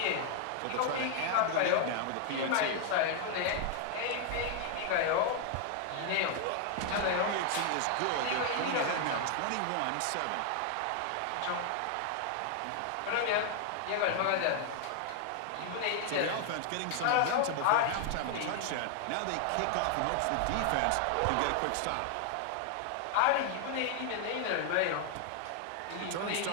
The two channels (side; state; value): both; different; correlation 0.00